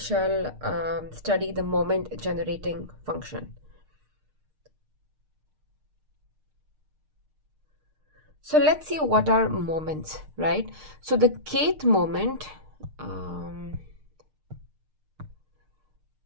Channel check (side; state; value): left; late; 6.5 ms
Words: study the moment generating function. So let's see what are moments, right? So the kth moment,